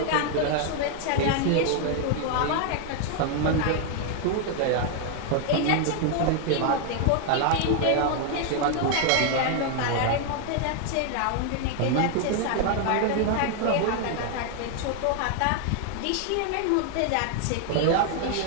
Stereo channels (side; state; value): both; different; correlation 0.00